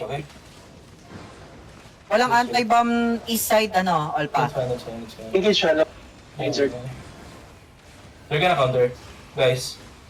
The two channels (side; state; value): both; identical; correlation 1.00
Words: okay? Walang anti-bomb east side, Olpa. That's fine. Engage siya. Insert. They're gonna counter. Guys,